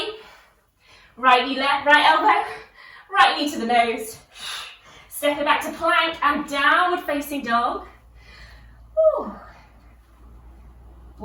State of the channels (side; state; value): both; identical; correlation 1.00